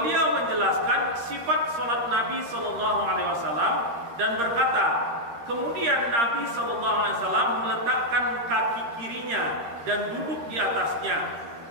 menjelaskan sifat salat Nabi sallallahu alaihi wasallam dan berkata, kemudian Nabi sallallahu alaihi wasallam meletakkan kaki kirinya dan duduk di atasnya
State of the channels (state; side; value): late; left; 13 ms